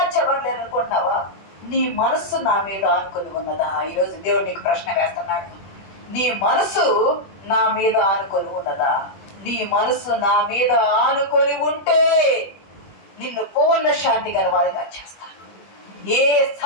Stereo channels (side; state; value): right; late; 21 ms